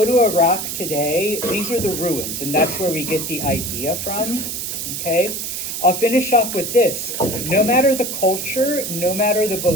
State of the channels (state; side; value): noise; right; hiss, 4 dB below the sound